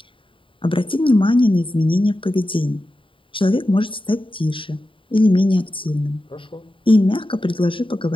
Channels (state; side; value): late; right; 0.25 ms